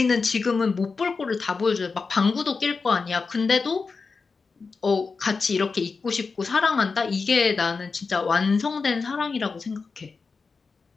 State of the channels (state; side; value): quieter; right; 4.6 dB